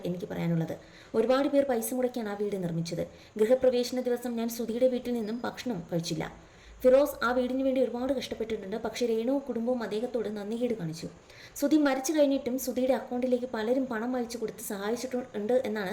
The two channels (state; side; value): identical; both; correlation 1.00